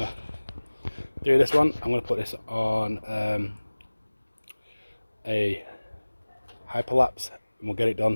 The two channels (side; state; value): both; inverted; correlation -1.00